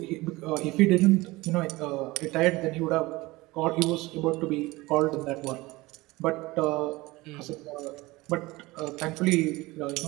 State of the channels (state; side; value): quieter; left; 20.9 dB